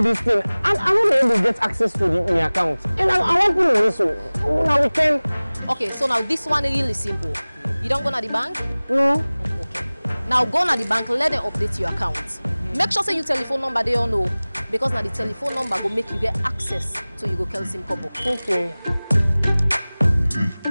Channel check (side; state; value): both; inverted; correlation -0.99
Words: this thing and I want to able to get access to my account. And I want to know so now we can. Okay, so now this one is really simple. You don't go to the bank? No. Okay. Now go to the bank, let them update your account. Make sure say your telephone number they all know, because now the telephone number will make you get access to you go call SIM couple. Okay.